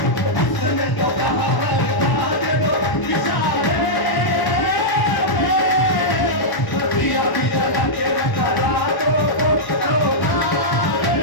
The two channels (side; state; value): right; late; 1.0 ms